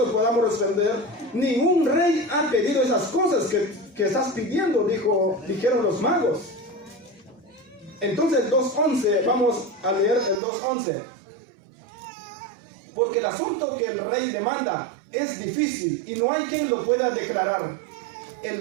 podamos responder. Ningún rey ha pedido esas cosas que estás pidiendo, dijeron los magos. Entonces el 2.11, vamos a leer el 2.11. Porque el asunto que el rey demanda es difícil y no hay quien lo pueda declarar.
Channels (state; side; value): drops out; left; at 10.4 s